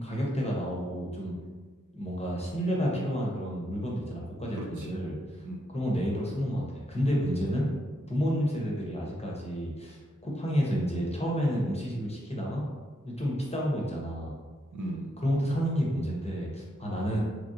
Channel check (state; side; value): normal; both; correlation 0.79